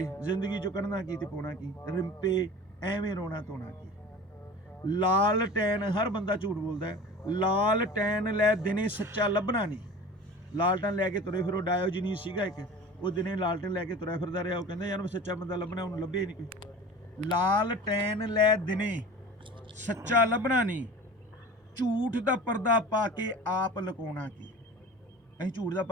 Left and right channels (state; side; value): normal; both; correlation 0.38